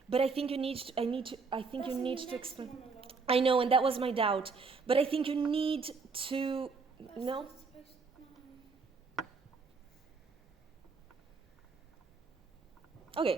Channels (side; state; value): left; quieter; 4.6 dB